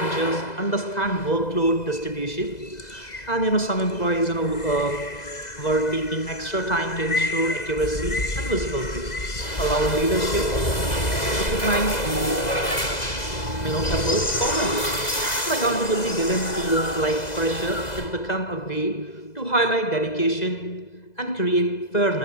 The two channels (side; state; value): right; late; 2.0 ms